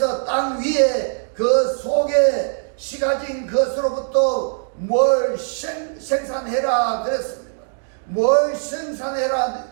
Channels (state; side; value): silent; left; digital silence